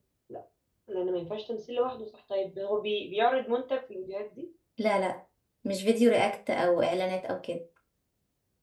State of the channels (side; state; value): both; identical; correlation 1.00